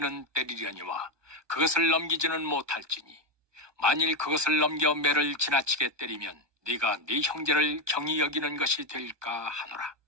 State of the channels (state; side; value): late; left; 1.2 ms